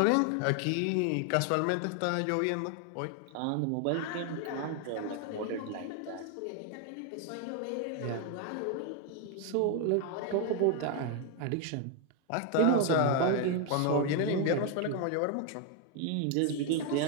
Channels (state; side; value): different; both; correlation 0.01